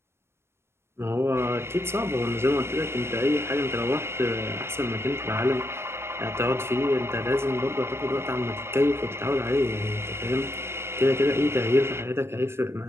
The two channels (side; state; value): left; late; 0.12 ms